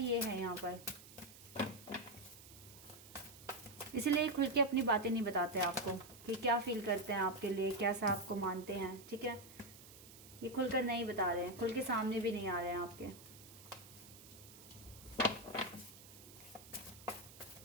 ये है यहाँ पर, इसीलिए खुल के अपनी बातें नहीं बताते आपको कि क्या फील करते हैं आपके लिए, कैसा आपको मानते हैं, ठीक है। ये खुलकर नहीं बता रहे हैं, खुल के सामने भी नहीं आ रहे हैं आपके।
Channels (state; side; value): noise; right; hiss, 18 dB below the sound